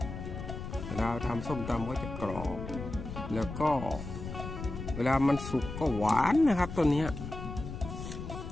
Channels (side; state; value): left; noise; rumble, 8 dB below the sound